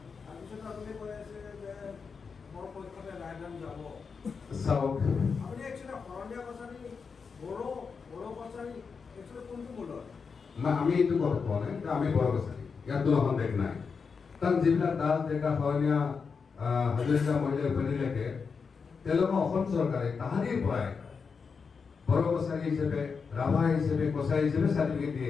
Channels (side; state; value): right; quieter; 5.5 dB